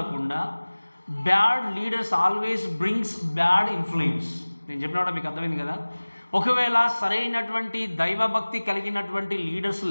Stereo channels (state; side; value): inverted; both; correlation -1.00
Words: bad leaders always brings bad influence. నేను చెప్పిన మీకు అర్థమైంది కదా. ఒకవేళ సరైనటువంటి దైవభక్తి కలిగినటువంటి లీడర్స్